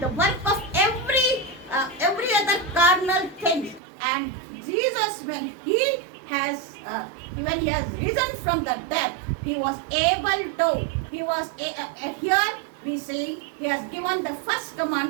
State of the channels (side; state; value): left; drops out; at 3.8 s